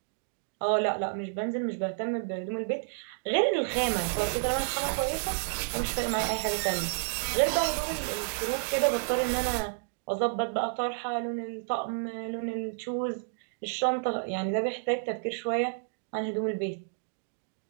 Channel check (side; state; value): left; silent; digital silence